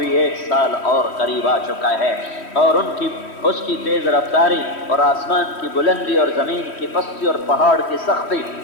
1 سال اور قریب آ چکا ہے، اور اس کی تیز رفتاری اور آسمان کی بلندی اور زمین کی پستی اور پہاڑ کی سختی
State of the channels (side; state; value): right; late; 3.1 ms